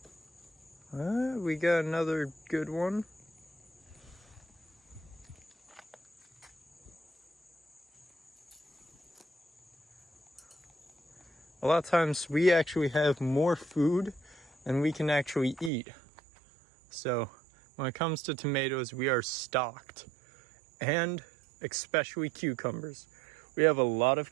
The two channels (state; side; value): drops out; left; at 15.7 s